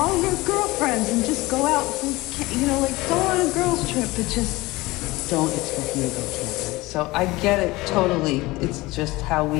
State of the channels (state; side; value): quieter; right; 20.8 dB